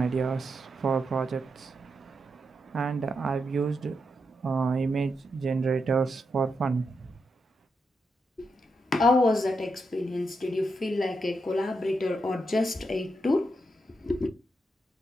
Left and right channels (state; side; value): normal; both; correlation 0.84